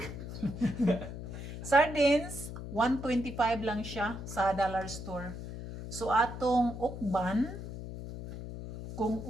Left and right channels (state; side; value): noise; left; hum, 9 dB below the sound